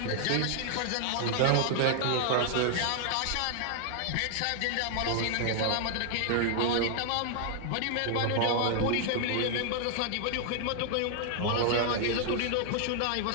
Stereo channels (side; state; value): both; different; correlation 0.00